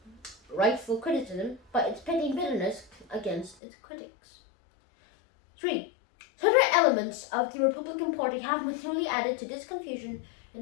rightful criticism, by its petty bitterness against its critics. 3. Certain elements of the Republican Party have materially added to this confusion in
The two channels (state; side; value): drops out; right; at 3.6 s